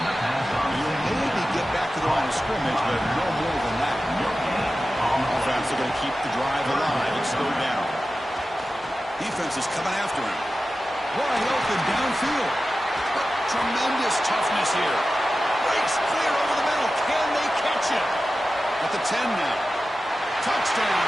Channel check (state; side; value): normal; both; correlation 0.94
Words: maybe get back to the line of scrimmage, but no more than that. Offense are going to keep the drive alive. It's 3rd down. Defense is coming after him. Wide open downfield. Tremendous toughness here. Breaks clear over the middle. Can they catch him? At the 10 now.